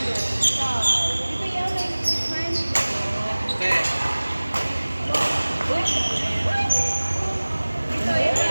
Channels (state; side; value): inverted; both; correlation -1.00